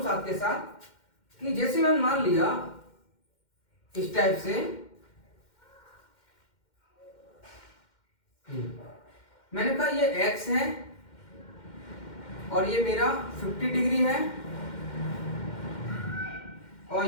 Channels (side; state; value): right; late; 2.1 ms